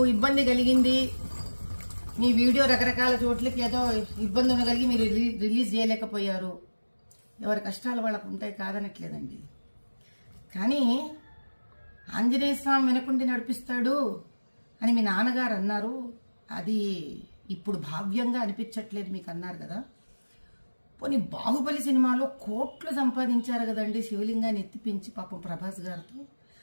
ఇబ్బంది కలిగింది, మీ వీడియో రకరకాల చోట్లకి ఏదో ఇబ్బంది ఉండగలిగి మీరు రిలీజ్ చేయలేకపోయారు. ఎవరి కష్టాలు వాళ్ళకు ఉంటాయి, కాదనట్లేదండి. కానీ ఆంజనేయ స్వామి వెనకుండి నడిపిస్తాడు అని మీ నాన్నగారు అన్నారు. అది ఇప్పుడు భావ్యంగా అనిపించట్లేదు మీకు అన్నారు కదా. పోనీ బాహుబలి సినిమాలో కోట్లు సంపాదించారు కదండి శివలింగాన్ని ఎత్తిపించి పాపం ప్రభాస్ గారితో.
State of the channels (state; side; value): inverted; both; correlation -1.00